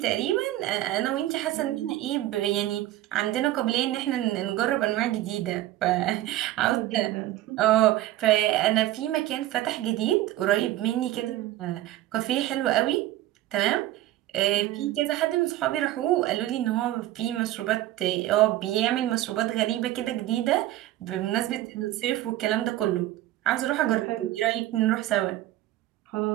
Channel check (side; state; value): left; quieter; 14.8 dB